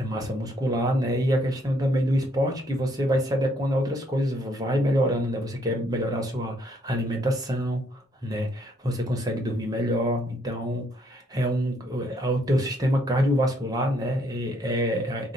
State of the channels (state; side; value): normal; both; correlation 0.69